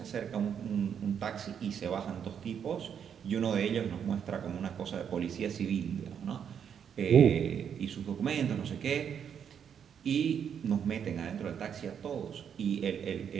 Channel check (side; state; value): left; quieter; 8.0 dB